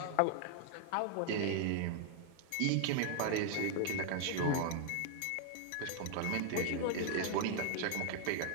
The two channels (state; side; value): different; both; correlation 0.00